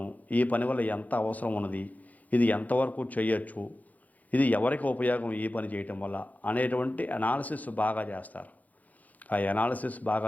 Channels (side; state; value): right; late; 0.078 ms